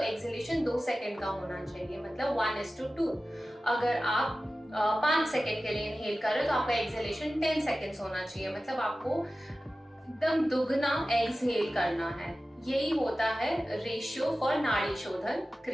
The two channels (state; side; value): normal; both; correlation 0.95